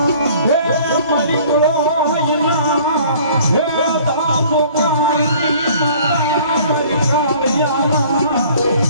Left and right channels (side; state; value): both; inverted; correlation -0.52